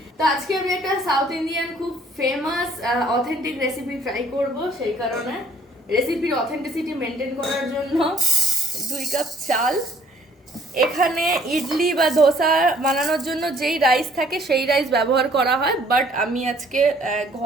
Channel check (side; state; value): both; normal; correlation 0.61